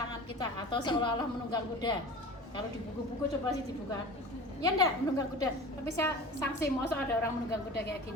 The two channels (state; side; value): normal; both; correlation 0.37